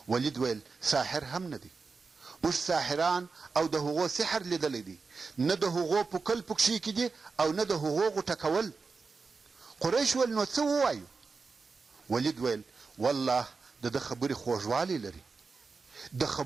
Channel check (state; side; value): quieter; left; 4.5 dB